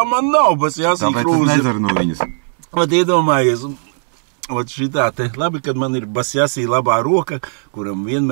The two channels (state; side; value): silent; left; digital silence